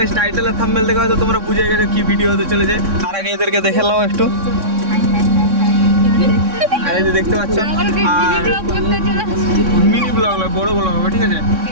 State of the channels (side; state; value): left; late; 3.6 ms